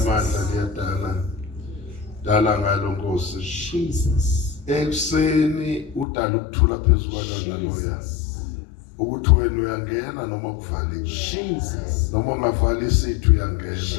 liyadala. Dala ngalo Nkosi. Jesus. Ekuseni udala ukuthula phezulu kwalona loya. Ukuthi wena uyangena noma kuvaliwe. Jesus. Noma ungavali isithu uyangena.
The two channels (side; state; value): right; drops out; at 6.1 s